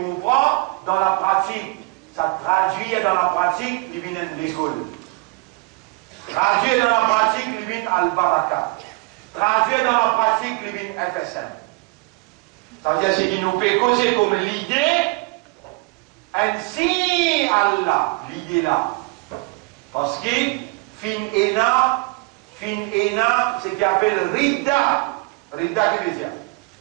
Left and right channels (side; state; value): left; quieter; 26.4 dB